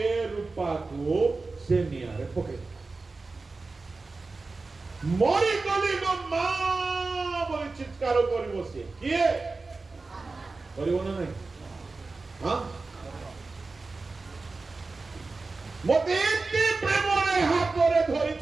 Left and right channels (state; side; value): quieter; left; 3.8 dB